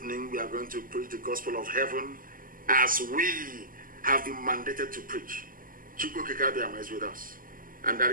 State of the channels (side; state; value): left; late; 0.41 ms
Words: we are going to preach the gospel of heaven as we have been mandated to preach. Chukwu Kikabiyama is with us. And that